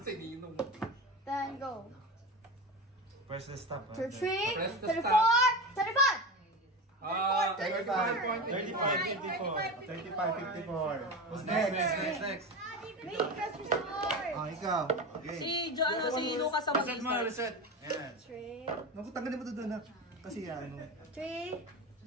Then go. Press the stop. 33, Press the 34, stop. 35. 35, 54. Who's next? Wait, press restart. Ah, ikaw. Okay. Si Lucas sa Reset mo, reset. Ayan. 3, Naku, tanggalin mo to doon ha. Kasi ano. 3,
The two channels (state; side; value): normal; both; correlation 0.24